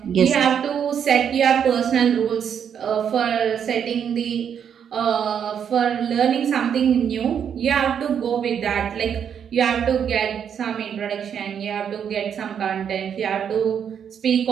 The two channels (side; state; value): left; quieter; 8.1 dB